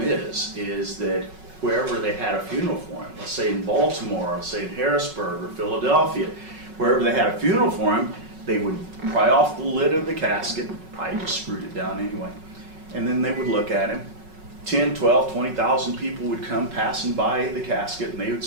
is that wherever they had a funeral for him, let's say in Baltimore, let's say in Harrisburg or Philadelphia, wherever they had a funeral for him, they would pry off the lid of the casket, probably just screwed it down anyway, and then they would look at him. 10, 12, 20,000 people would come passing by the casket, and they would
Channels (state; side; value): late; left; 5.4 ms